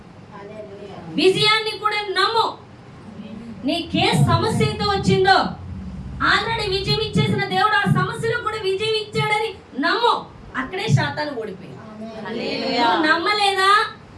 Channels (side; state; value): both; identical; correlation 1.00